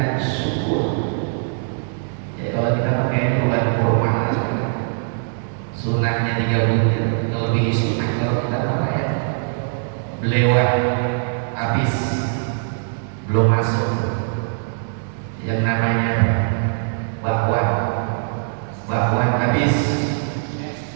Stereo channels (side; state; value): left; silent; 65 dB below the other